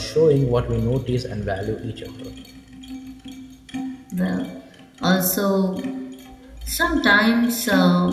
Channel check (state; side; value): identical; both; correlation 1.00